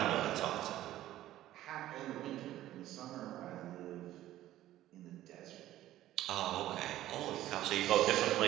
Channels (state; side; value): quieter; left; 14.1 dB